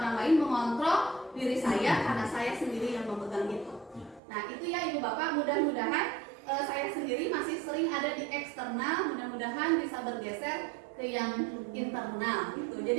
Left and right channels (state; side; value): drops out; left; at 4.2 s